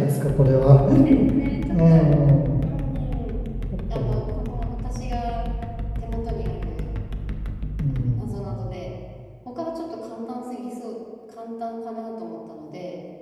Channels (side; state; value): both; identical; correlation 1.00